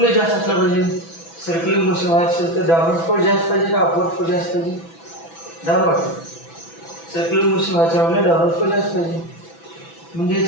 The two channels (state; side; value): late; right; 6.0 ms